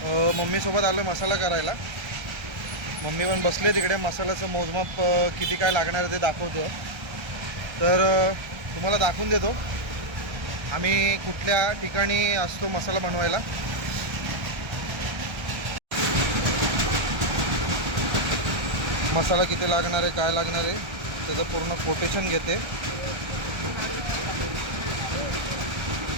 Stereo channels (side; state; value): left; late; 1.3 ms